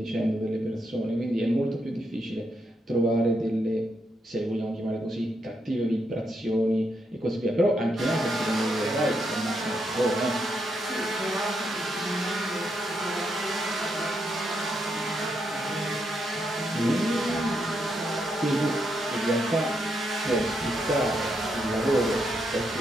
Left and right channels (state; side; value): normal; both; correlation 0.80